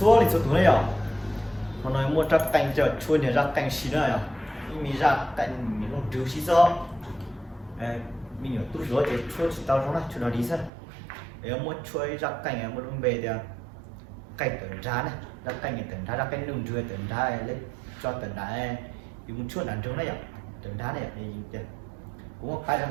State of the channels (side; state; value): left; drops out; at 10.7 s